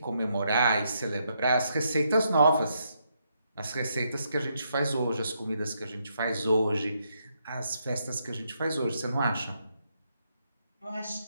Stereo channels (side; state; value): both; inverted; correlation -0.78